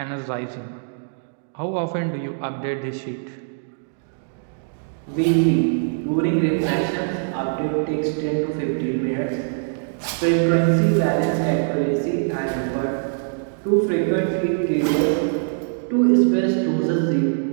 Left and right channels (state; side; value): silent; left; digital silence